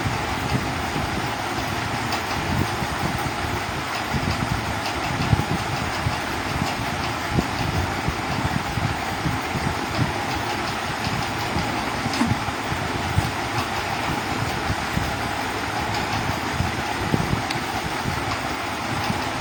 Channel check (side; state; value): both; identical; correlation 1.00